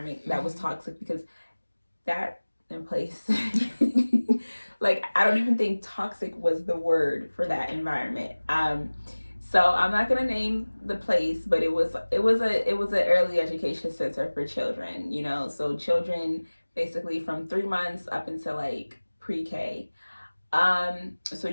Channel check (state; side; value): inverted; both; correlation -1.00